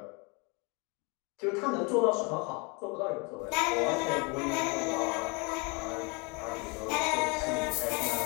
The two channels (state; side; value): quieter; right; 30.7 dB